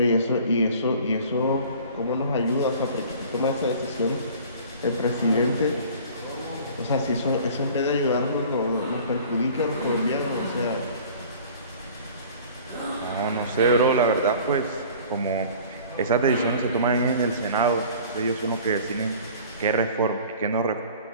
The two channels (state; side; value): inverted; both; correlation -0.46